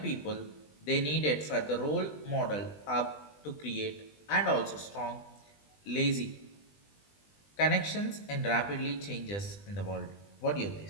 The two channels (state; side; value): late; right; 20 ms